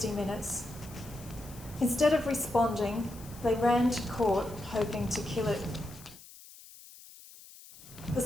Minutes. Instead of responding, they ran to court hoping to kill it. The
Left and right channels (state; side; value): noise; left; hiss, 19 dB below the sound